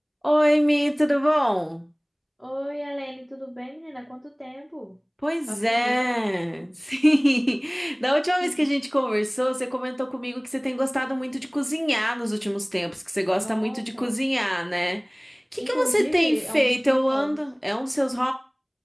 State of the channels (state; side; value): identical; both; correlation 1.00